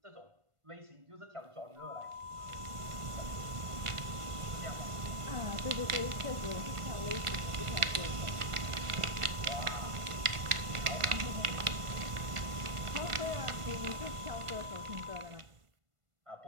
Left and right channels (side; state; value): left; late; 1.5 ms